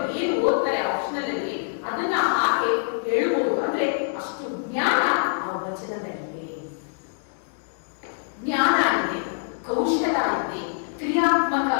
ಏನು ಓದ್ತಾರೆ ಆಪ್ಷನಲ್ ಅಲ್ಲಿ ಅದನ್ನ ಹಾಗೆ ಹೇಳ್ಬೋದು. ಅಂದ್ರೆ ಅಷ್ಟು ಜ್ಞಾನ ಆ ವಚನದಲ್ಲಿದೆ. ಜ್ಞಾನ ಇದೆ, ಕೌಶಲ ಇದೆ, ಕ್ರಿಯಾತ್ಮಕ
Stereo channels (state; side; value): silent; right; digital silence